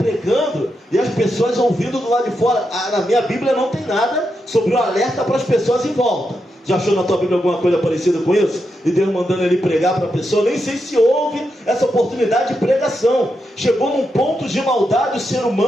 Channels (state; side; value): normal; both; correlation 0.85